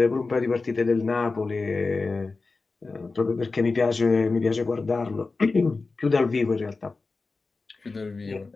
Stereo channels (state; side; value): quieter; right; 3.9 dB